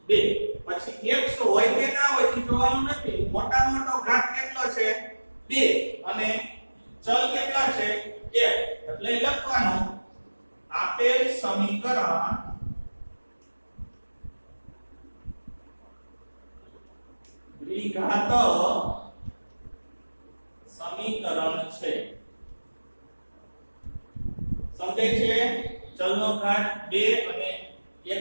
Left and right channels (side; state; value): both; inverted; correlation -1.00